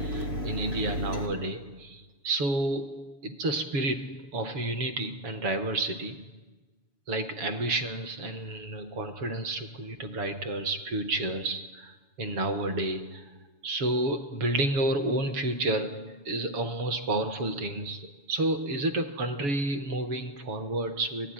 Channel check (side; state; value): left; late; 7.1 ms